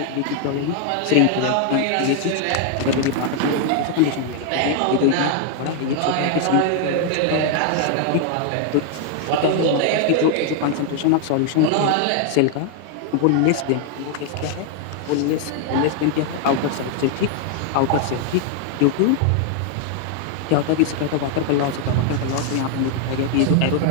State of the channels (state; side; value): different; both; correlation 0.00